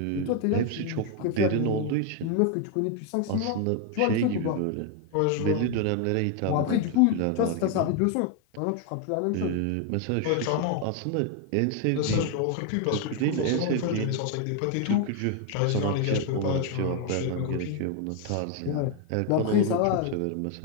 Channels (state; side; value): different; both; correlation 0.01